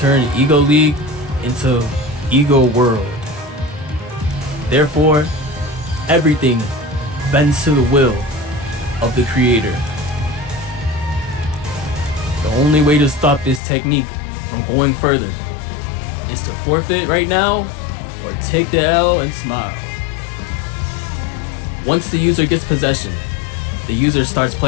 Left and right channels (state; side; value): drops out; right; at 13.6 s